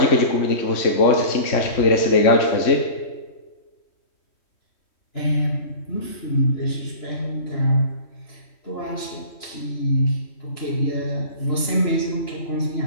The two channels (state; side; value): late; right; 3.1 ms